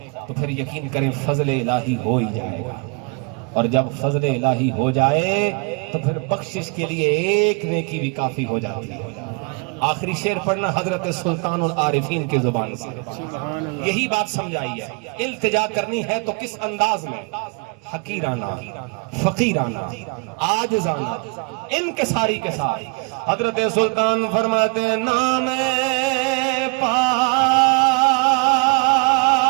تو پھر یقین کریں فضل الہی ہو ہی جائے گا، اور جب فضل الہی ہو جائے تو پھر بخشش کے لیے ایک نیکی بھی کافی ہو جاتی ہے۔ آخری شعر پڑھنا حضرت سلطان العارفین کی زبان سے، یہی بات سمجھائی ہے، التجا کرنی ہے تو کس انداز میں، حقیرانہ، فقیرانہ، عاجزانہ، انکساری کے ساتھ۔ حضرت سلطان فرماتے ہیں نام پاک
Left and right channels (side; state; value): left; quieter; 33.0 dB